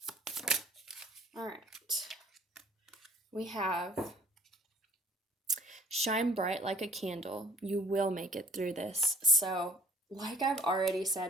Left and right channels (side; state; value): both; normal; correlation 0.52